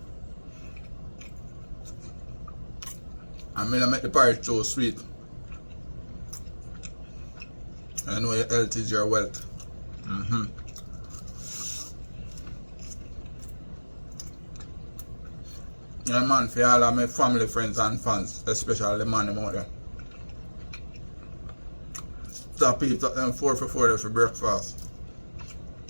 I'm gonna make the porridge so sweet. I know your health is your wealth. Yeah, man, for all of my family, friends, and fans, especially the man out there. Stop eat up them 4 for 4 for breakfast.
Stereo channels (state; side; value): inverted; both; correlation -1.00